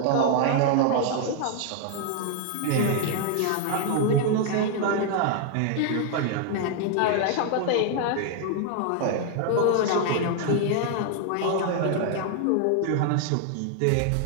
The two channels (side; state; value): both; different; correlation 0.00